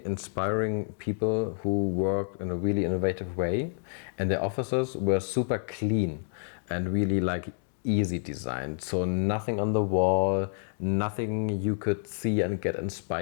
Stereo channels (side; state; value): right; silent; digital silence